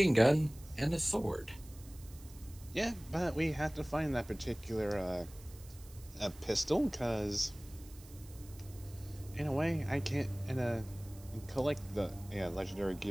gun, and a sword. Yeah, but we have to find that particular pistol, because in a way I can't collect the legendary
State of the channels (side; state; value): right; noise; hiss, 21 dB below the sound